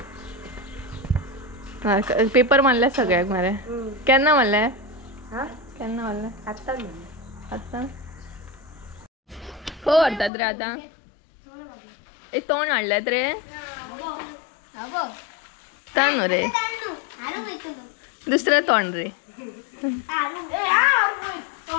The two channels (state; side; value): drops out; right; at 10.3 s